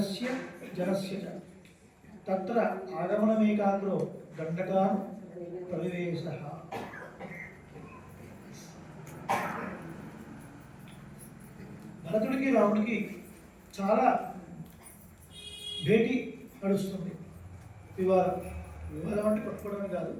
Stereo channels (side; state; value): both; identical; correlation 1.00